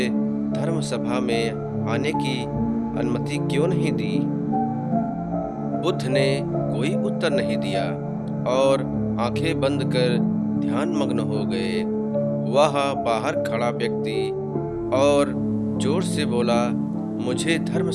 धर्म सभा में आने की अनुमति क्यों नहीं दी? बुद्ध ने कोई उत्तर नहीं दिया और आंखें बंद कर ध्यान मग्न हो गए। वह बाहर खड़ा व्यक्ति और जोर से बोला, मुझे धर्म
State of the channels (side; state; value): both; identical; correlation 1.00